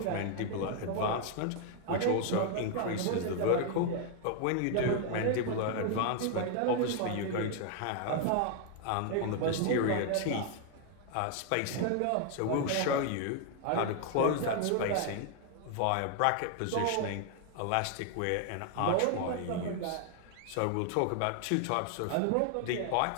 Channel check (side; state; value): both; different; correlation 0.00